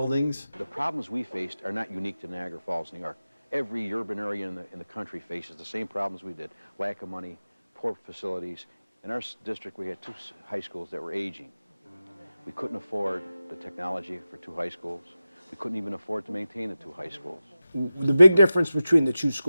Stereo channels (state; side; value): inverted; both; correlation -0.94